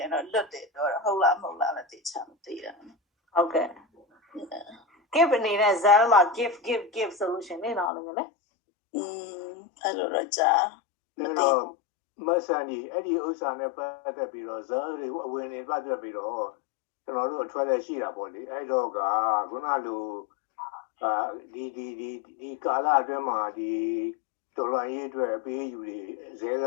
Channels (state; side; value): drops out; right; at 7.9 s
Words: င်တော့လွတ်တယ်တော့ဟုတ်လားမဟုတ်လားလည်းသိချင်မသိတာဟုတ်ကဲ့ give နေတဲ့ cell မှာ give solution နေတော့လို့လေအဲ့လိုတော့ကြားမသိမဆန်ကြီးအဲ့ဒီဥစ္စာနဲ့ပတ်သက်ပြီးတော့ဇာတ်တွေအဝင်နေပတ်သက်ပြီးတော့ကျွန်တော်တို့အထွက်လက်ရှိတာပေါ့လေအဲ့တော့ကခုနလိုဒီကာလအတွင်းမှာဒီတော်လှန်ရေးအတွက်အပေးယူတွေဇဲက